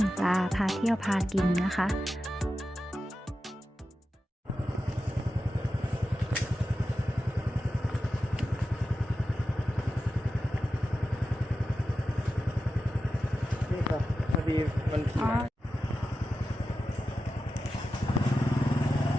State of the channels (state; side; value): normal; both; correlation 0.92